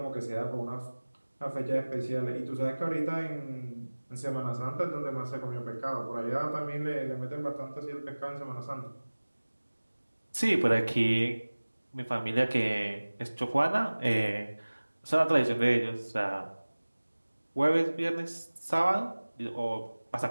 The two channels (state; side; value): inverted; both; correlation -1.00